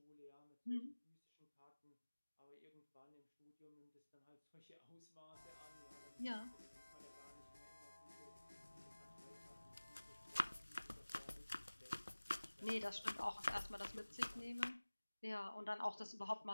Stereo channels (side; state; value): both; inverted; correlation -1.00